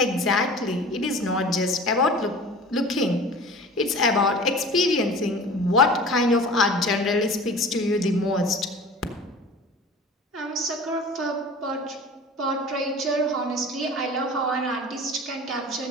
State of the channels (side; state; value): both; normal; correlation 0.40